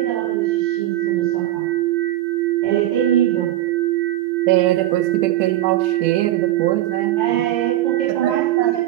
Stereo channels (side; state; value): left; quieter; 14.5 dB